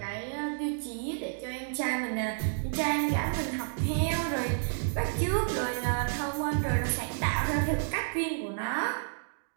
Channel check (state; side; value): silent; left; digital silence